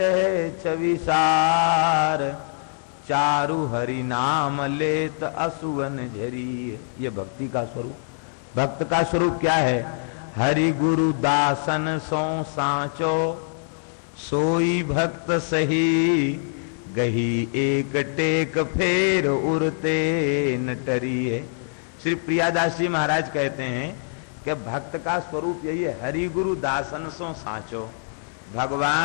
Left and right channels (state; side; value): silent; right; digital silence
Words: छविसार, चारु हरि नाम लेत असुवन झरी। ये भक्ति का स्वरूप। भक्त का स्वरूप क्या है? हरि गुरु दासन सो सांचो, सोई भक्त सही, गही एक टेक फेर उड़ते न टरी है। श्री प्रियादास जी महाराज कहते हैं कि भक्त का स्वरूप यही है, हरि गुरु दासन सो सांचो।